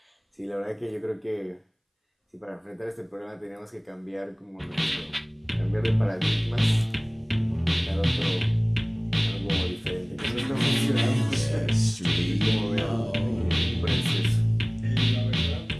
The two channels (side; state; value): both; identical; correlation 1.00